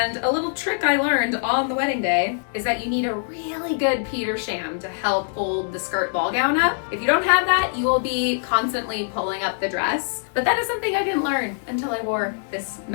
a little trick I learned on the wedding day is that you need a really good Peter sham to help hold the skirt ball gown up. If you don't have that, you will be constantly pulling up the dress. But that is something I didn't learn until I wore this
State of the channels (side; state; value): right; silent; 62 dB below the other